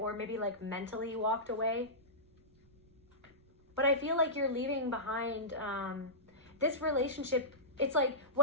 maybe like mentally walked away. But I feel like you're leaving behind... this relationship, it's like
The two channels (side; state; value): right; noise; rumble, 29 dB below the sound